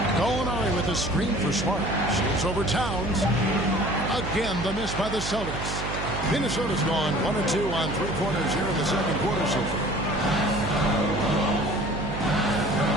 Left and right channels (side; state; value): right; noise; hum, 6 dB below the sound